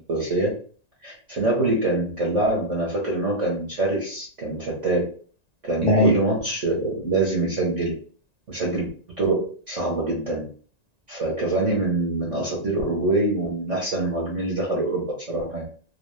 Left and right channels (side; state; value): left; late; 1.9 ms